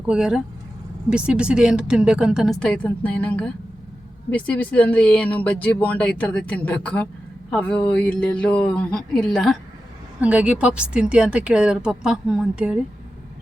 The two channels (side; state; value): both; normal; correlation 0.92